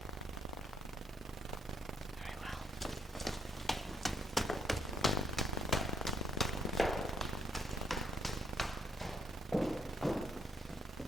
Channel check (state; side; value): normal; both; correlation 0.72